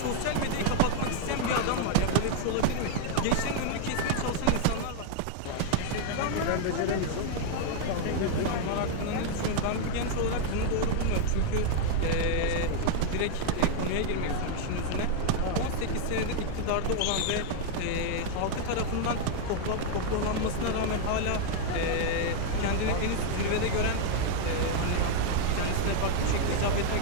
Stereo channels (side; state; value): both; different; correlation 0.00